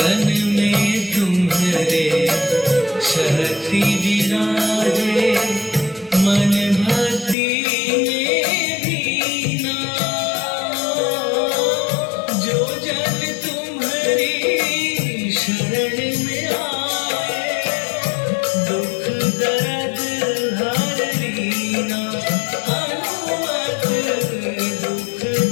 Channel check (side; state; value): right; drops out; at 7.4 s